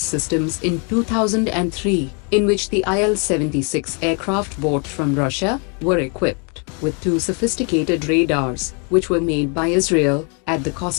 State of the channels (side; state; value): right; quieter; 36.9 dB